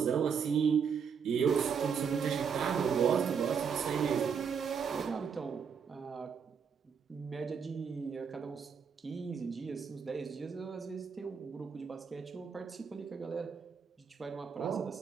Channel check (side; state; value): left; quieter; 6.6 dB